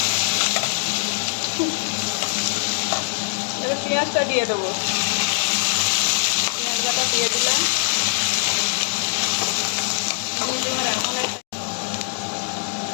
এবার পেঁয়াজটা দিয়ে দেবো, পেঁয়াজটা দিয়ে দিলাম।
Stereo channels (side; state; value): right; silent; digital silence